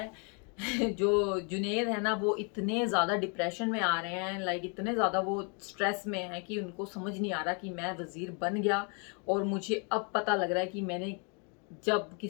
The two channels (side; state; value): right; quieter; 36.7 dB